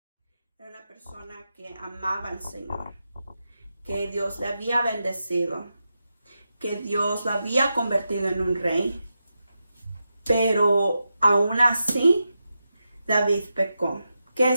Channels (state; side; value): inverted; both; correlation -0.88